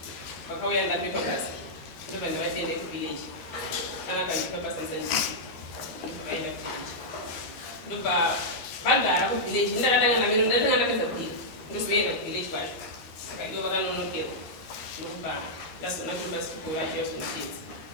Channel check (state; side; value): late; right; 13 ms